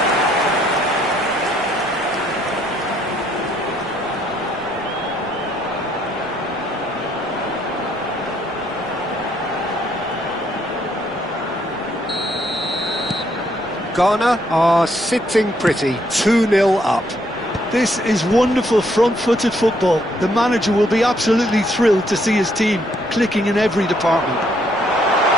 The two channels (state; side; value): noise; right; rumble, 24 dB below the sound